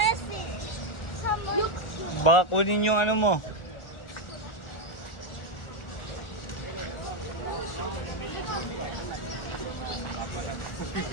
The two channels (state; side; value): late; right; 1.4 ms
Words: Baka kunin yung ano mo.